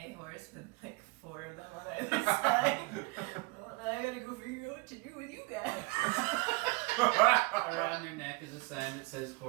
horse with like 4 of them on either side. Well, now I gotta go figure out what to do with you guys. Around their neck is a sign that says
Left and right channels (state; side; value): quieter; left; 26.2 dB